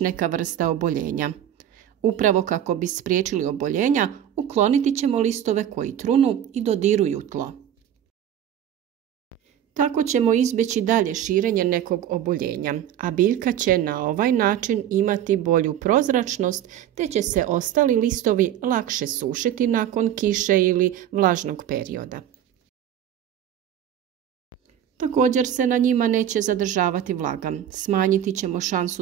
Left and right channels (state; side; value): quieter; left; 10.5 dB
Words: vrsta oboljenja. Upravo kako bi spriječili oboljenja, ukloniti ćemo listove koji trunu i dodiruju tlo. Tako ćemo izbjeći dalje širenje nekog oboljenja, a biljka će na ovaj način imati bolju prozračnost, te će se ostali listovi lakše sušiti nakon kiše ili vlažnog perioda. Također se na njima neće zadržavati vlaga, smanjiti ćemo